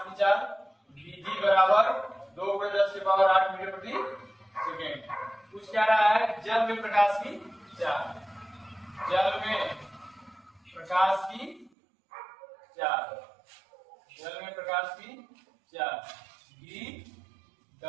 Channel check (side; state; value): left; drops out; at 11.7 s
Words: की चाल VG बराबर 2×10⁸ मीटर प्रति सेकंड। पूछ क्या रहा है, जल में प्रकाश की चाल, जल में प्रकाश की चाल, जल में प्रकाश की चाल